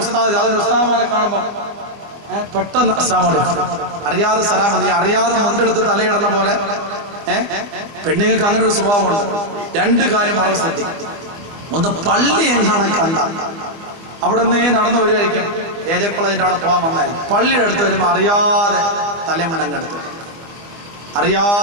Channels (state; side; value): late; left; 25 ms